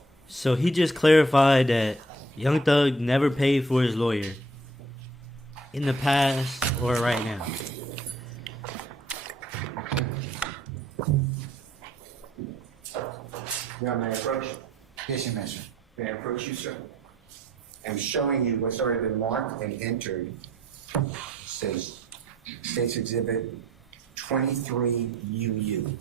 So he just clarified that Young Thug never paid for his lawyer in the past or right now. Your Honor, may I approach? Yes, you may, sir. May I approach you, sir? I'm showing you what's already been marked and entered. Says States Exhibit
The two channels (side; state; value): both; normal; correlation 0.60